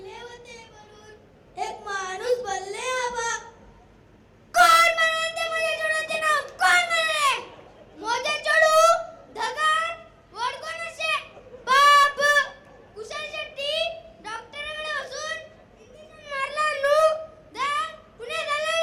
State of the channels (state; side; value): identical; both; correlation 1.00